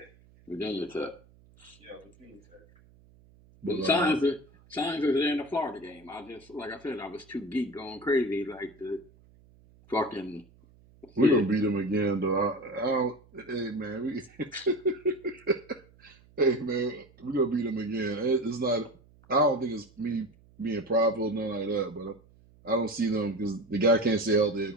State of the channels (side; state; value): right; noise; hum, 27 dB below the sound